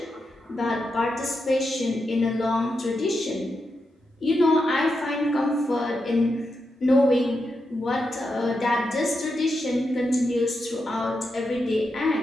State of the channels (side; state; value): both; normal; correlation 0.86